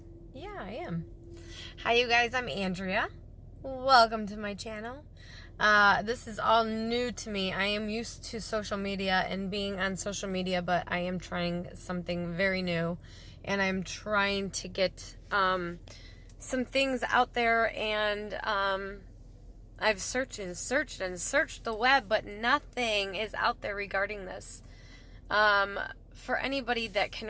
Yeah, I am. Hi, you guys. I'm Andrea. Welcome to my channel. This is all new to me. I am used to social media and being on social media, but I am trying something very new, and I'm trying to get some things out there, and I've searched the web, but nothing is out there regarding this. For anybody that can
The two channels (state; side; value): identical; both; correlation 1.00